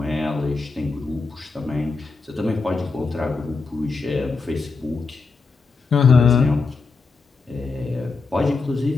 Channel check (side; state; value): right; quieter; 4.2 dB